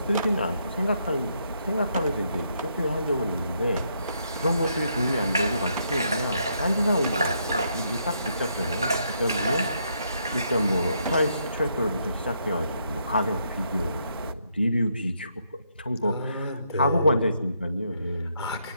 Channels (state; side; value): inverted; both; correlation -0.75